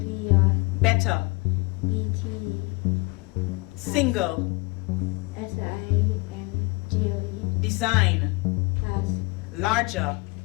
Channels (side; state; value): right; quieter; 26.0 dB